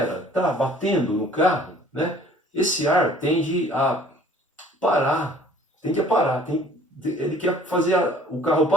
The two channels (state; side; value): normal; both; correlation 0.53